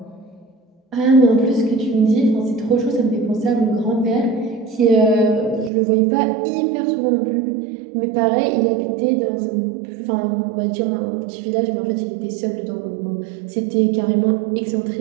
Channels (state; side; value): drops out; left; at 5.7 s